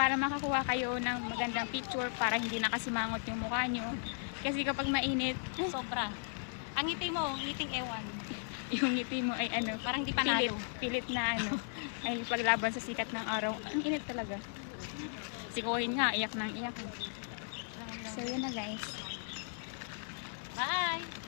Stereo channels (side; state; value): right; silent; digital silence